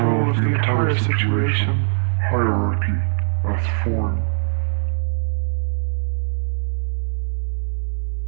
of the entire situation, hierarchy as form.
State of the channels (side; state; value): left; silent; digital silence